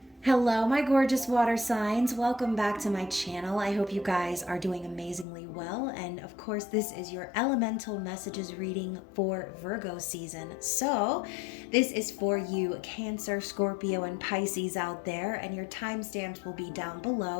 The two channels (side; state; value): right; drops out; at 5.2 s